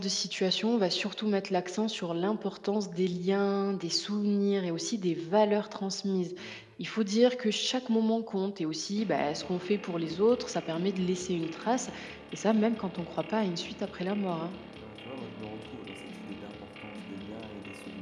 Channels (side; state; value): both; identical; correlation 1.00